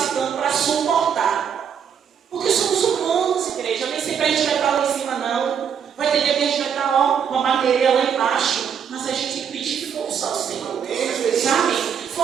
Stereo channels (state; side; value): quieter; left; 7.7 dB